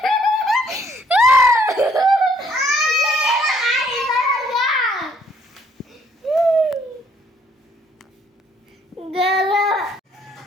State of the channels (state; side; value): normal; both; correlation 0.66